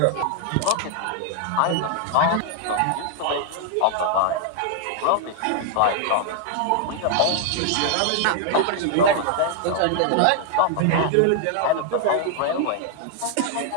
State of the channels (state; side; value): different; both; correlation -0.01